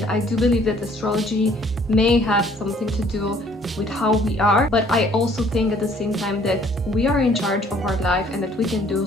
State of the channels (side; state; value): both; normal; correlation 0.59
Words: I do believe that astrology may have something to do with how we are, but I also think at the same time that we are in charge of our life and that we can do